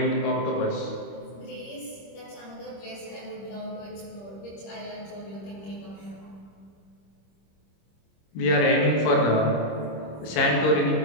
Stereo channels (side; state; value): right; late; 26 ms